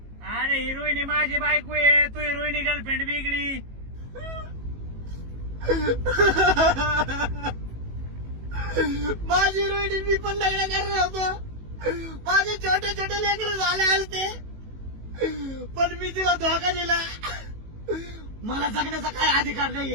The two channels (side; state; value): left; late; 18 ms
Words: अरे ही रोहिणी माझी बायको आहे, तू ही रोहिणी गर्लफ्रेंड वेगळी. माझी रोहिणी मी पण लग्न करणार होतो. माझे छोटे छोटे लेकर झाले असते, पण मी तिला धोका दिला. मला जगण्याचा काय अधिकार